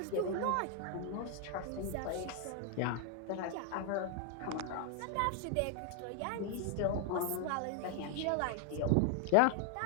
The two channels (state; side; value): different; both; correlation 0.00